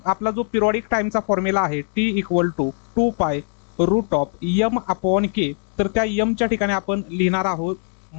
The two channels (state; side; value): silent; right; 57 dB below the other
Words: आपला जो पिरियॉडिक टाइमचा फॉर्म्युला आहे T equal to 2π root of m upon k. तर त्या mच्या ठिकाणी आपण लिहिणार आहोत